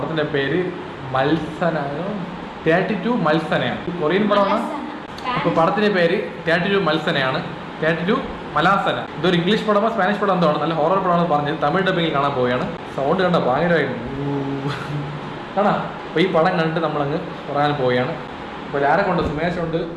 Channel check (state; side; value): identical; both; correlation 1.00